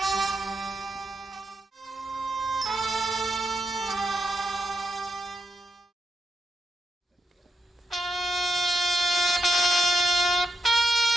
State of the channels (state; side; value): normal; both; correlation 0.83